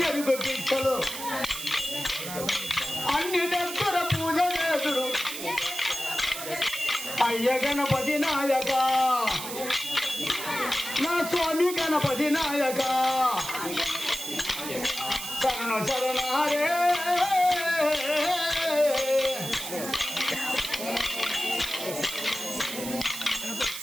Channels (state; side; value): noise; right; hiss, 8 dB below the sound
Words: పిచ్చలు అన్ని దగ్గర పూజ చేసుడు అయ్య గణపతి నాయక నా స్వామి గణపతి నాయక శరణ శరణారే